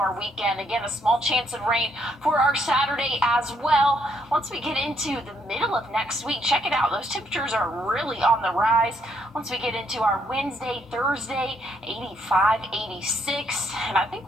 weekend. Again, a small chance of rain for our Saturday as well. Once we get into the middle of next week, check it out. Those temperatures are really on the rise. Once we get into our Wednesday, Thursday, 85, 86, and I think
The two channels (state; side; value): normal; both; correlation 0.72